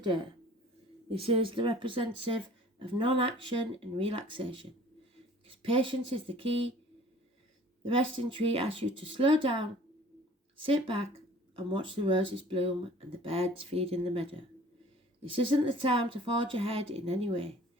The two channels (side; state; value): both; normal; correlation 0.50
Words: This is the representative of non-action and relaxation. Because patience is the key. The resting tree asks you to slow down, sit back and watch the roses bloom and the birds feed in the meadow. This isn't the time to forge ahead in any way.